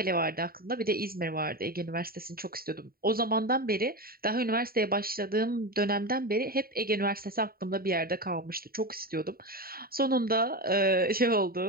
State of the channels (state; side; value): late; left; 0.43 ms